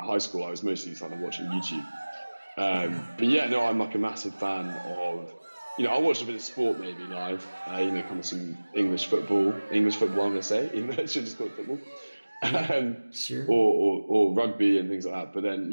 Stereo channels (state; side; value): inverted; both; correlation -1.00